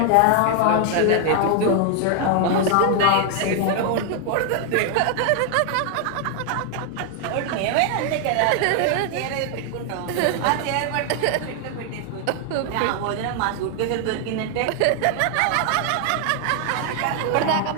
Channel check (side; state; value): both; different; correlation 0.00